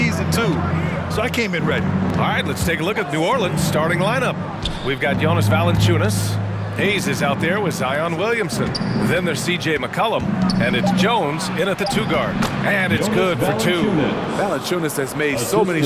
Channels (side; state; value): both; identical; correlation 1.00